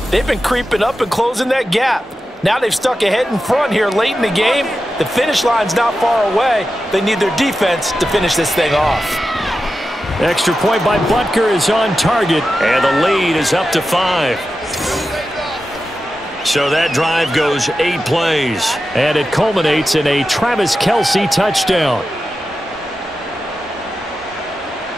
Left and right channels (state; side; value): normal; both; correlation 0.92